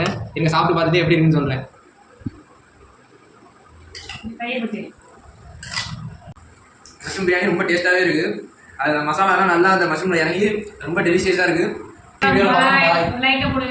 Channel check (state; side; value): identical; both; correlation 1.00